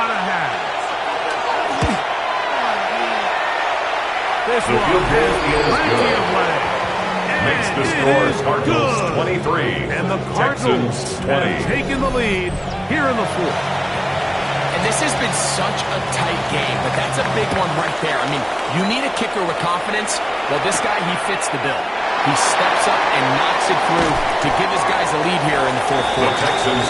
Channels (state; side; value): identical; both; correlation 1.00